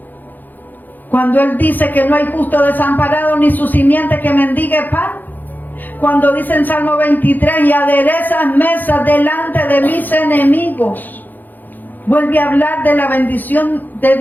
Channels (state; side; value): late; right; 0.085 ms